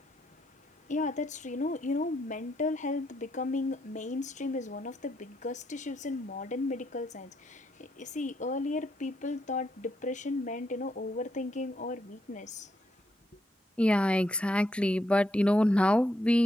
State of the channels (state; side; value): normal; both; correlation 0.77